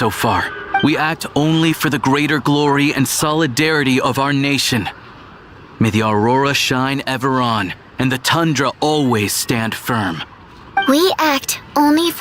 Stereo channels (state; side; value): identical; both; correlation 1.00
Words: far. We act only for the greater glory and solidarity of our nation. May the aurora shine ever on, and the tundra always stand firm. We act only